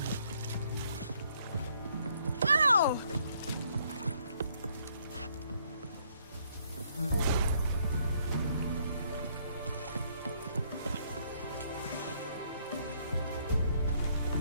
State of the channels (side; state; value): both; inverted; correlation -0.68